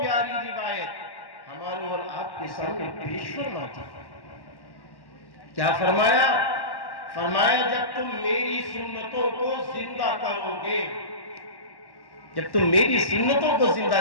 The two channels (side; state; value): right; late; 1.1 ms